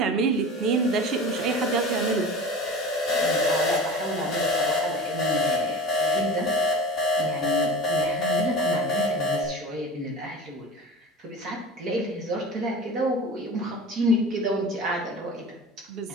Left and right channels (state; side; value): normal; both; correlation 0.34